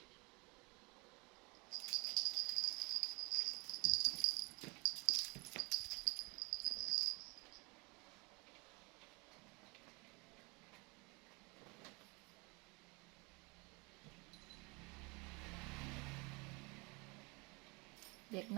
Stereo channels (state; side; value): quieter; left; 28.2 dB